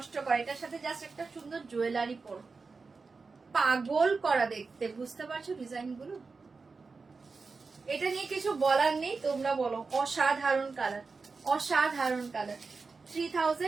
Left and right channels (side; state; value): left; quieter; 4.4 dB